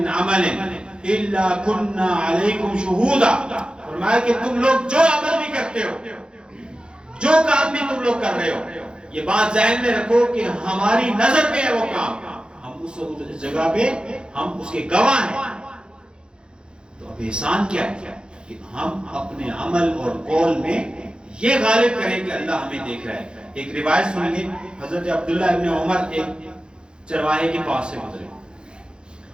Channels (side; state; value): left; late; 0.050 ms